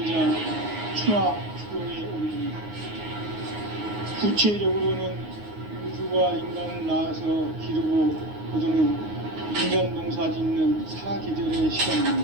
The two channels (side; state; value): left; late; 9.5 ms